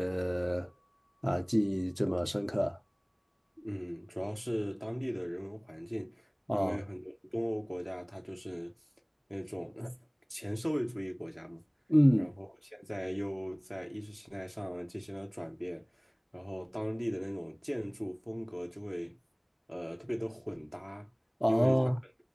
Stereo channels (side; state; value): both; identical; correlation 1.00